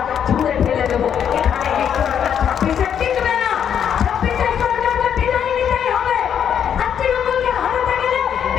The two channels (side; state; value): right; quieter; 8.6 dB